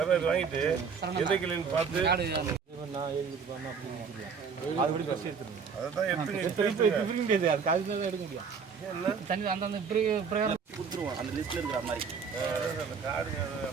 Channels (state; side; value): quieter; left; 5.9 dB